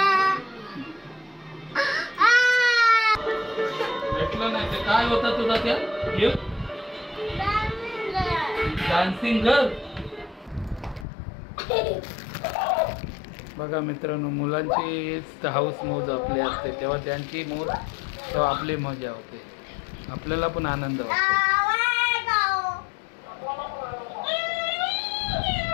भेटलं नाही ते काय होता तुझा त्या गिफ्ट? Dancing girl. बघा मित्रांनो, मुलांची हाऊस मौज आपली असते तेव्हा त्यांची मौज तेव्हा आपली मजा होते, आपल्याला पण आनंद वाटतो.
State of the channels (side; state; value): right; drops out; at 11.1 s